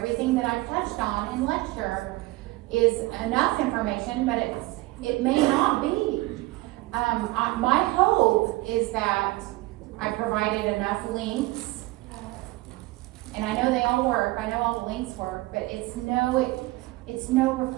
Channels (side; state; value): left; quieter; 20.3 dB